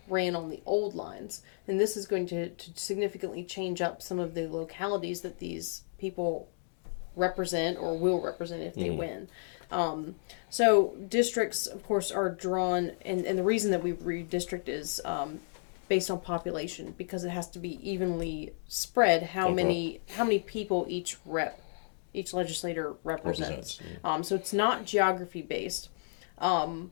ran on the old lines, and this is going to significantly change up some of the localities that these people represent or will represent if they win. So districts, of course, are drawn, and the reason that we redistrict is based on population, because it has to be evenly spread how many people each legislator represents. So it's not geography based.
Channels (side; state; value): right; silent; digital silence